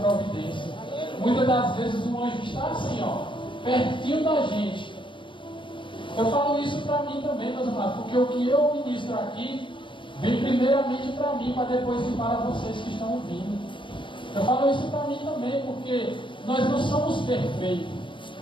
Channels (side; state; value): right; late; 0.24 ms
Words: Muitas das vezes o anjo está assim, ó, pertinho da gente. Eu falo isso para mim também, meus amados, porque o que eu ministro aqui vem primeiramente para mim, para depois ir para vocês que estão ouvindo. Eu falo isso para mim também, porque nós não somos perfeitos.